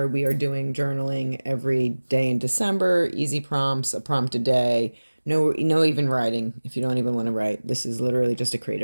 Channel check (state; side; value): inverted; both; correlation -1.00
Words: we are doing journaling every day in December, easy prompts, a prompt a day. No even writing if you don't even want to write. This is literally just a